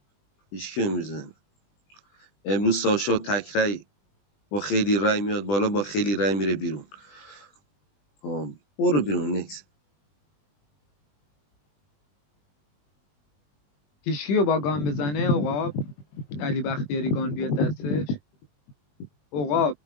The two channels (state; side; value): late; right; 20 ms